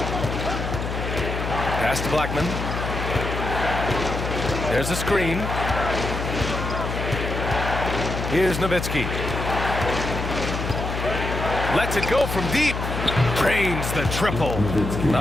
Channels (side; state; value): left; noise; hum, 4 dB below the sound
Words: Pass to Blackman. There's a screen. Here's Nowitzki. Lets it go from deep. Drains the triple.